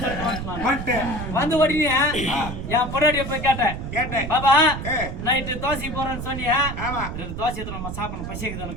சொல்லிட்டு வந்து உடனே என் பொண்டாட்டிய போய் கேட்டேன் பாபா நைட்டு தோசைக்கு போறேன்னு சொன்னியா 2 தோசை எடுத்து நம்ம சாப்பிடணும்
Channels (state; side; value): noise; right; rumble, 6 dB below the sound